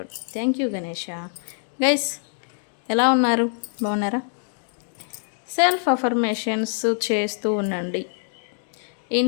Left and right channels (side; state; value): right; silent; digital silence